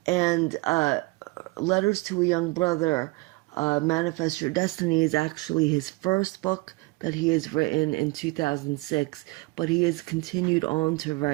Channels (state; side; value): quieter; left; 24.3 dB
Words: Letters to a Young Brother, Manifest Your Destiny is actually his first book that he has written in 2006, but he has continued on to